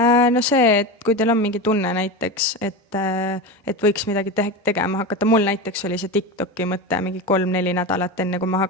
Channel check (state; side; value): normal; both; correlation 0.23